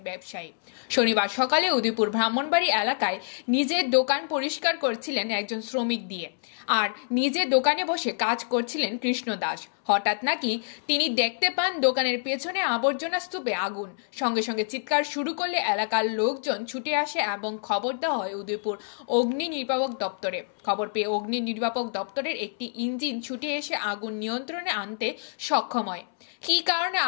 ব্যবসায়ী। শনিবার সকালে উদয়পুর ব্রাহ্মণবাড়ি এলাকায় নিজের দোকান পরিষ্কার করছিলেন একজন শ্রমিক দিয়ে, আর নিজের দোকানে বসে কাজ করছিলেন কৃষ্ণ দাস। হঠাৎ নাকি তিনি দেখতে পান দোকানের পেছনে আবর্জনা স্তূপে আগুন। সঙ্গে সঙ্গে চিৎকার শুরু করলে এলাকার লোকজন ছুটে আসে এবং খবর দেওয়া হয় উদয়পুর অগ্নি নির্বাপক দপ্তরে। খবর পেয়ে অগ্নি নির্বাপক দপ্তরের একটি ইঞ্জিন ছুটে এসে আগুন নিয়ন্ত্রণে আনতে সক্ষম হয়। কী কারণে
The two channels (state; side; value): silent; right; 60 dB below the other